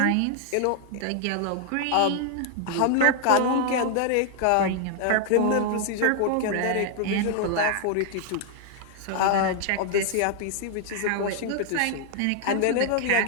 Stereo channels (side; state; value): both; different; correlation 0.00